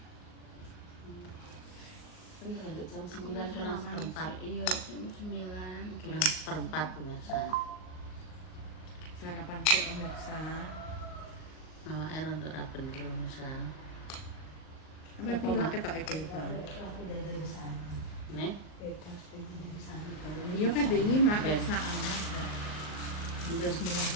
Jam Aku 9 pas sarapan. Iya, jam 9-an gitu. perempat pemirsa. Sarapan sih pemirsa. Malah air untuk rapen pemirsa. Apa pilek ketok itu, Pak? Nih, Iya kan ini mak saan.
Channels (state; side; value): late; right; 39 ms